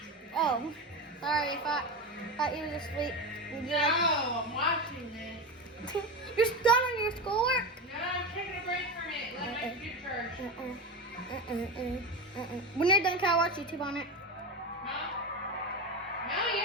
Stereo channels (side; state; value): both; normal; correlation 0.20